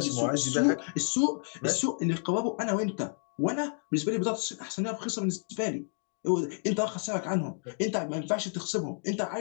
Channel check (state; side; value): silent; right; 58 dB below the other